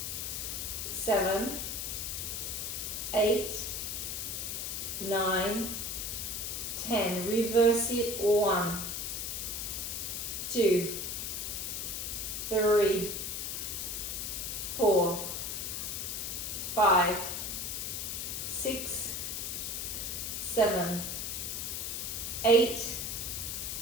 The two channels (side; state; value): left; noise; hiss, 3 dB below the sound